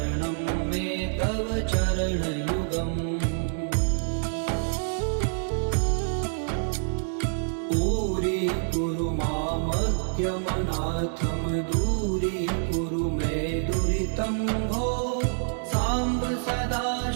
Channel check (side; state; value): left; silent; digital silence